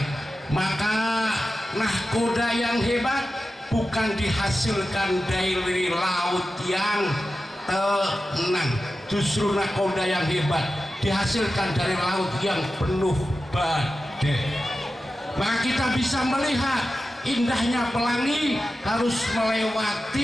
Maka nahkoda yang hebat bukan dihasilkan dari laut yang tenang, justru nahkoda yang hebat dihasilkan dari laut yang penuh badai. Maka kita bisa melihat indahnya pelangi harus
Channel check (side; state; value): both; normal; correlation 0.93